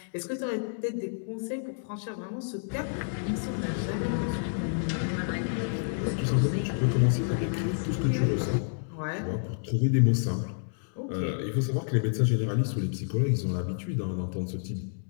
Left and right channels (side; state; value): right; silent; digital silence